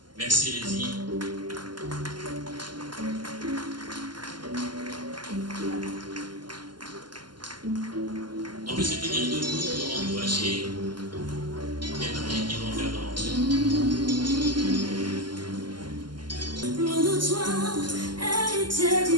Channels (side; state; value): left; late; 0.71 ms